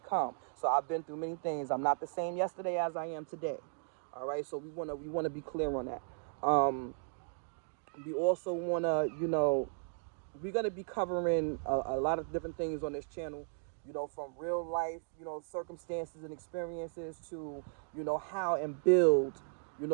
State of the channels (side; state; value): left; silent; digital silence